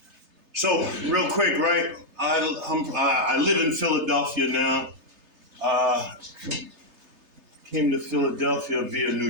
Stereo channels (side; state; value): left; late; 3.3 ms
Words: So, real quick, right? I live in Philadelphia now. Came to Philadelphia via New